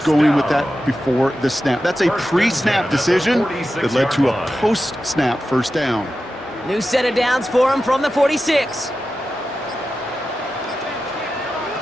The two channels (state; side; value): normal; both; correlation 0.92